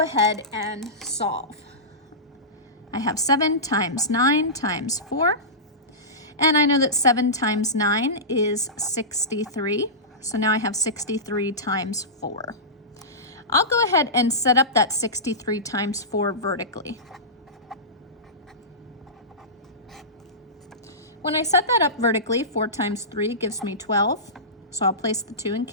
ahead and solve. I have 7 times 9 times 4. And I know that 7 times 9 is 63. So now I have 63 times 4. I'll go ahead and set up that 63 times 4 vertically. When I set that up vertically, 4 times 3 gives me 12. So I'll place the 2 and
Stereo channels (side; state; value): both; normal; correlation -0.18